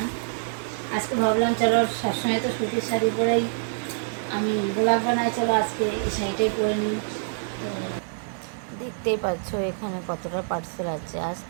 আজকে ভাবলাম চলো, সবসময় তো সুতির শাড়ি পরেই আমি ব্লগ বানাই, চলো আজকে এই শাড়িটাই পরে নিই। তো দেখতেই পাচ্ছ এখানে কতটা পার্সেল আছে।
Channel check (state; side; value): silent; left; digital silence